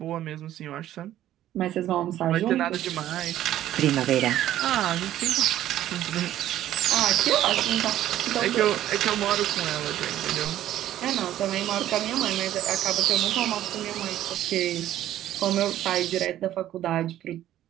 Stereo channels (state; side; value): quieter; left; 12.7 dB